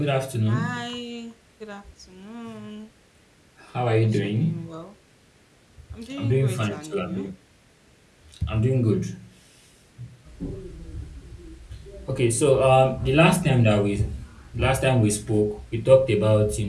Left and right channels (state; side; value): identical; both; correlation 1.00